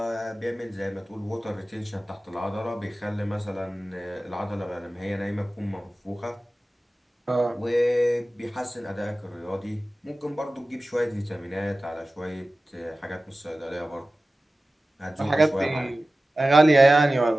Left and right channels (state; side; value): normal; both; correlation 0.96